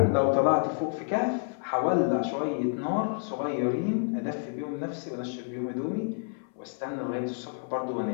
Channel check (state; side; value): silent; right; 59 dB below the other